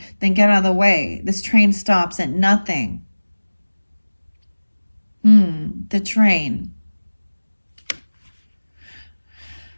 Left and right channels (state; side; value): inverted; both; correlation -1.00